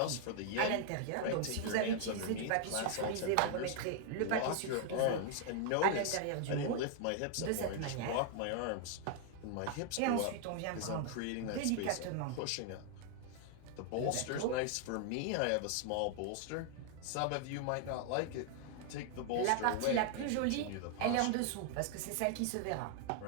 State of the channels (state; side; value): different; both; correlation 0.00